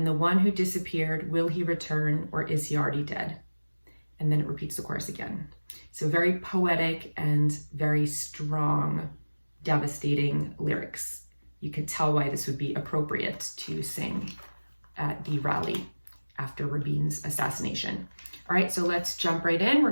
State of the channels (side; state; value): both; inverted; correlation -1.00